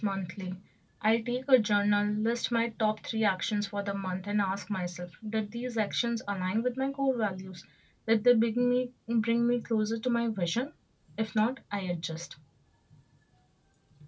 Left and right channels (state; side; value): identical; both; correlation 1.00